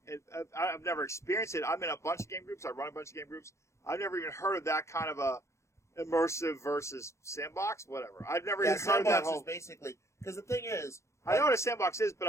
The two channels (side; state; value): right; late; 0.14 ms